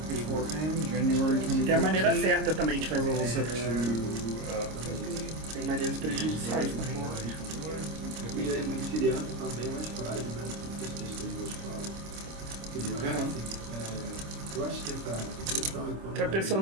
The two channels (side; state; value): left; late; 26 ms